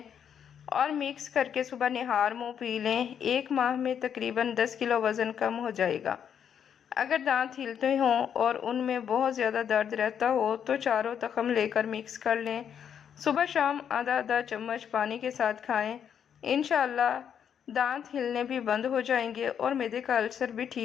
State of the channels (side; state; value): right; quieter; 8.3 dB